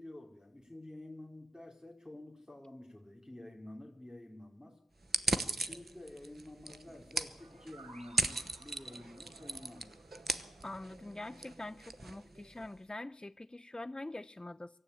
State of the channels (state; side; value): normal; both; correlation 0.88